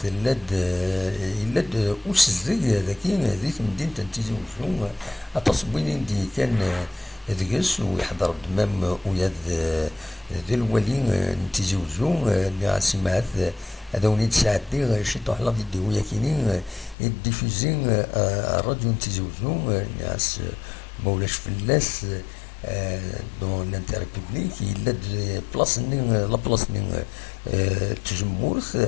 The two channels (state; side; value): drops out; right; at 16.9 s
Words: يلاد أسزي ذاكي ذي مدينة تنتيزي وزو أتصبين دي كان ذقس ويحضر دمام وياد ذي الولي نتيزي وزو نعسي معاذ هذا ونيت ساعتي شي طوح لا فيديو ياكيني يديفوزي الراديو نتيزي وزو نعس مولاش فلاس دون لانتيري بوبليك يلا بلاصني لا بلاصني تجمورث